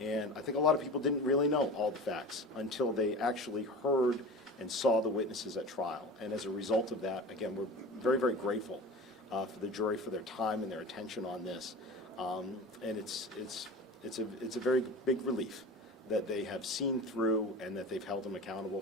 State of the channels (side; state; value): both; normal; correlation 0.33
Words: I think a lot of people didn't really know all the facts until they actually heard and saw the witnesses at trial. And as a result of that, again, we're very, very grateful for the jury for their time and their attention on this. And it's a very big relief that they have seen through and that they've held him accountable